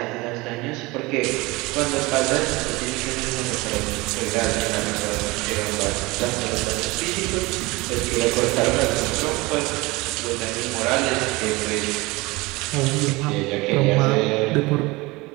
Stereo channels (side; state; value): left; quieter; 22.9 dB